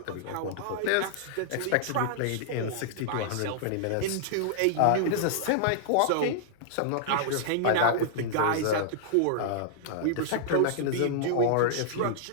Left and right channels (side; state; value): both; different; correlation -0.01